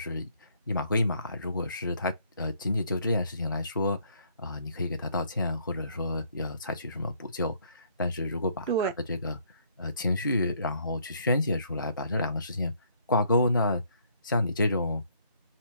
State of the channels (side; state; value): both; inverted; correlation -0.66